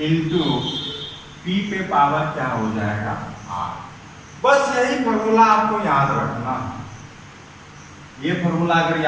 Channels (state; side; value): identical; both; correlation 1.00